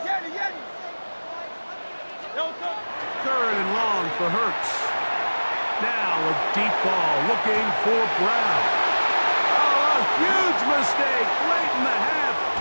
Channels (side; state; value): both; inverted; correlation -1.00